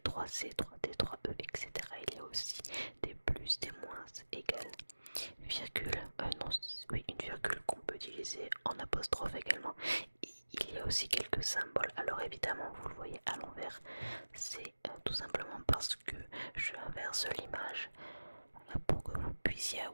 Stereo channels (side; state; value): both; inverted; correlation -1.00